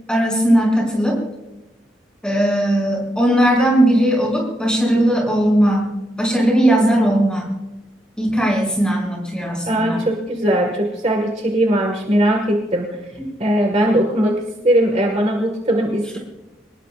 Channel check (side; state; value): both; normal; correlation 0.78